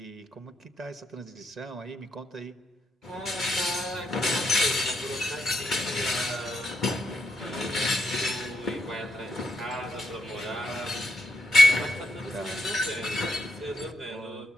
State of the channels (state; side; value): normal; both; correlation 0.81